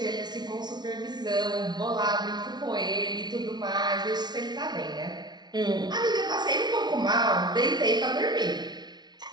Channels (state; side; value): late; left; 0.20 ms